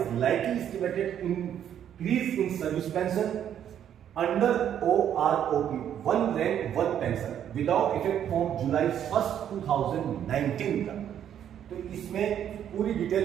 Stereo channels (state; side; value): quieter; left; 9.8 dB